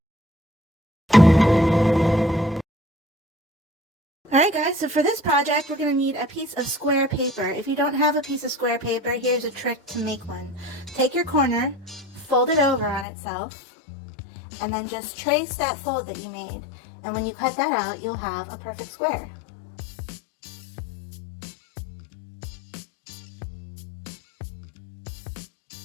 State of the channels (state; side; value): drops out; right; at 13.1 s